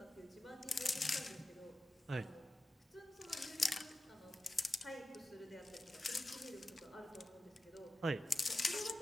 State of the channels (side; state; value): both; normal; correlation 0.94